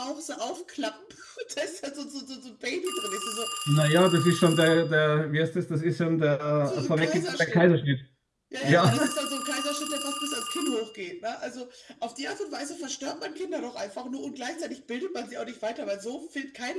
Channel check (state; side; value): identical; both; correlation 1.00